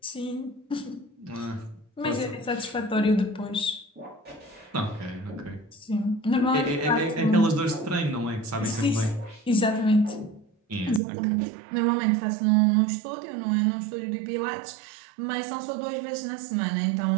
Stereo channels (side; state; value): left; drops out; at 11.0 s